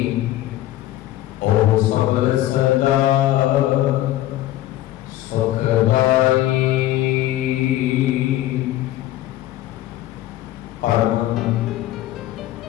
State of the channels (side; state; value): right; quieter; 14.5 dB